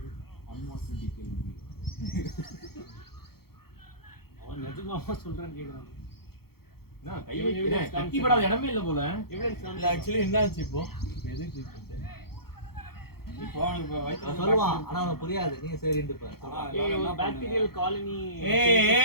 அன்வான்ட் டீடைல் அவன் நிஜமாவா சொல்றான்னு கேக்குறான். நான் கை வைக்கிறேன் கட்டிப்படாத இடமே இல்ல போல. இல்ல ஆக்சுவலி என்ன ஆச்சு இப்போ எது ட்ரீட்மெண்ட் இப்போ அவனுக்கு வயித்துல சொல்லுவான் ஆனா அவனுக்கு புரியாது. நீங்க சரின்னு ஏய் பாக்டீரியல் காலனி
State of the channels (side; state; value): right; late; 0.95 ms